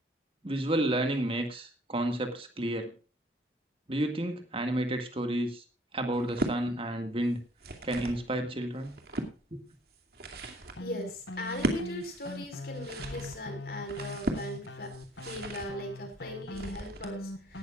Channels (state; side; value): normal; both; correlation 0.60